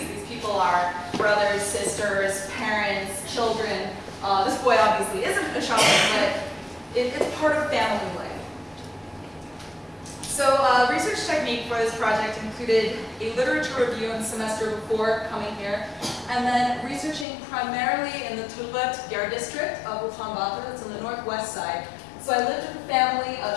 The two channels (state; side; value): drops out; right; at 17.2 s